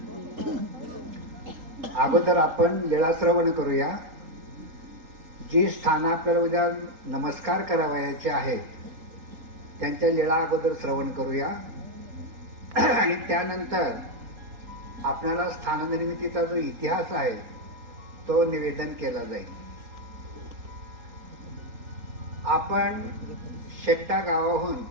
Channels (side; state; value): left; late; 3.8 ms